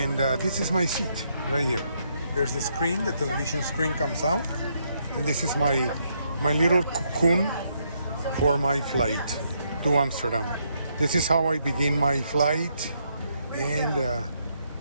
this is my seat right here. There's the screen, the television screen comes out, and this is my little cocoon for my flight to Amsterdam. This is how I begin my flight, and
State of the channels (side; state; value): both; inverted; correlation -0.75